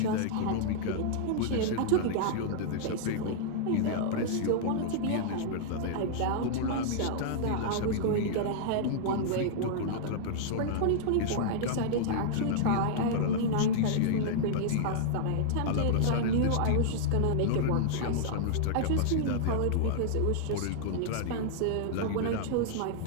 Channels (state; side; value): different; both; correlation -0.01